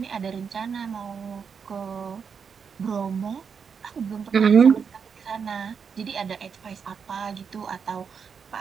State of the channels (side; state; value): left; quieter; 6.4 dB